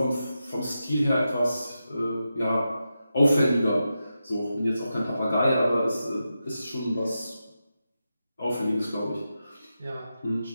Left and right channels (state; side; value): inverted; both; correlation -0.89